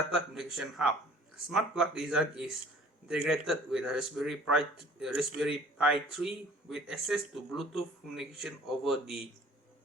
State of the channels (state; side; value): normal; both; correlation 0.51